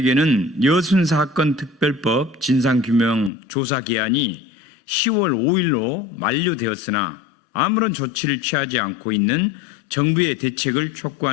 여순 사건 특별법 진상규명 조사 기한이 10월 5일로 만료되었으나 아무런 조치를 취하지 않고 있는 정부의 대책을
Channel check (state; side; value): drops out; right; at 3.3 s